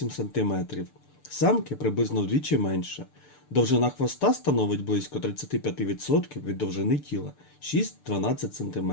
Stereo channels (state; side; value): late; right; 6.8 ms